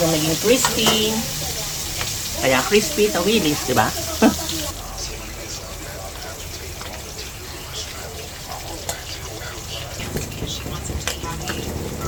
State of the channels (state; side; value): identical; both; correlation 1.00